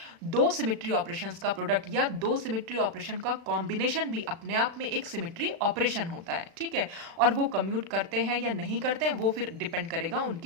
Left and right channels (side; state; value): left; late; 36 ms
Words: दो सिमेट्री ऑपरेशंस का प्रोडक्ट या दो सिमेट्री ऑपरेशन का कॉम्बिनेशन भी अपने आप में एक सिमेट्री ऑपरेशन होता है, ठीक है। और वो कम्यूट करते हैं या नहीं करते हैं वो फिर डिपेंड करेगा